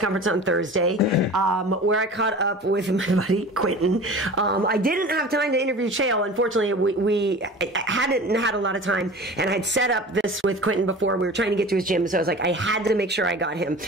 on Thursday, where I caught up with my buddy Quentin. I didn't have time to interview Chael. Unfortunately, we hadn't had a lot of time, and I'd set up this with Quentin before. We were trying to get to his gym, so I was like, I had to make sure I got him.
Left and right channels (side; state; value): both; normal; correlation 0.38